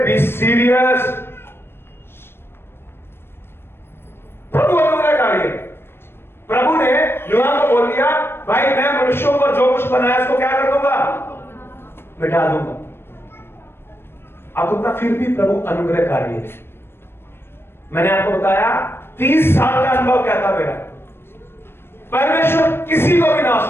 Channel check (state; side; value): late; right; 0.11 ms